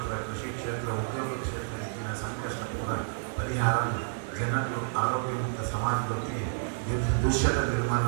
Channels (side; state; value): left; silent; 58 dB below the other